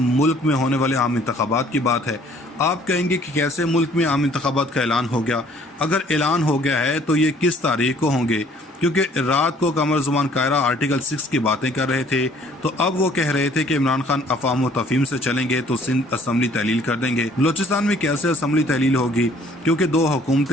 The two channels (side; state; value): both; normal; correlation 0.58